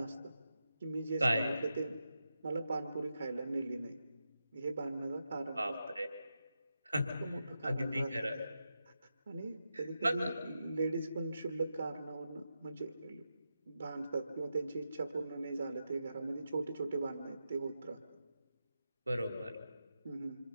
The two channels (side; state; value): both; inverted; correlation -0.88